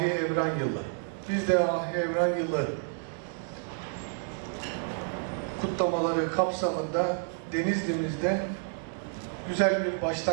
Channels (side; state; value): left; silent; 58 dB below the other